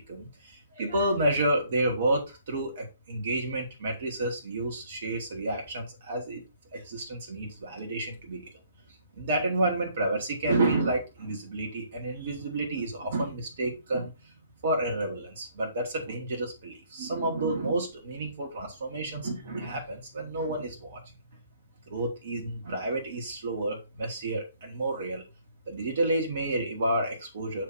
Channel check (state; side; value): inverted; both; correlation -0.64